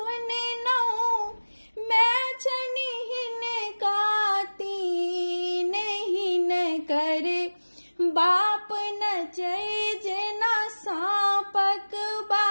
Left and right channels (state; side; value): inverted; both; correlation -1.00